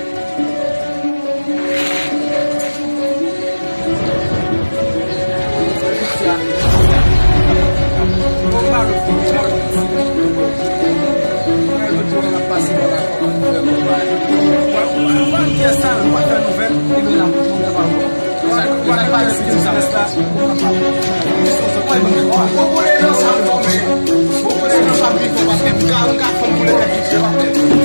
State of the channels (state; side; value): inverted; both; correlation -1.00